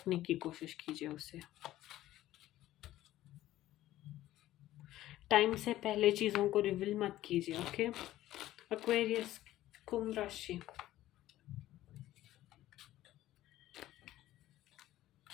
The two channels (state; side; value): quieter; right; 14.6 dB